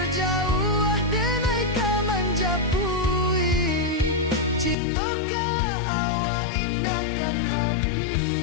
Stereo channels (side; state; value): right; drops out; at 4.8 s